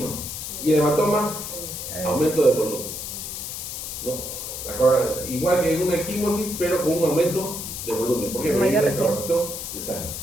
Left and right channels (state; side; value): noise; left; hiss, 7 dB below the sound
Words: Y el hematoma, aumento de volumen. ¿No? Igual que en una equimosis, pero con un aumento de volumen. ¿Por qué? Porque hay una evaporación de sangre.